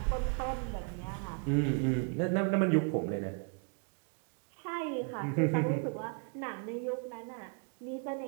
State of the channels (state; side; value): quieter; left; 39.9 dB